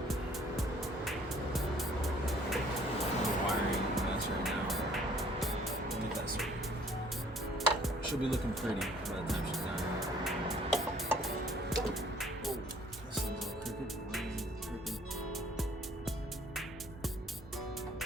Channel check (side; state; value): both; normal; correlation 0.59